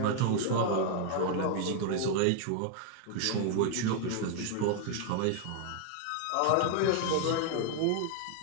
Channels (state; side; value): different; both; correlation 0.00